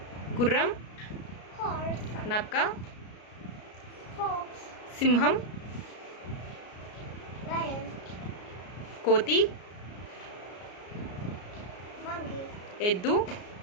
గుర్రం, horse, నక్క, fox, సింహం, lion, కోతి, monkey, ఎద్దు,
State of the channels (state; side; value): late; right; 33 ms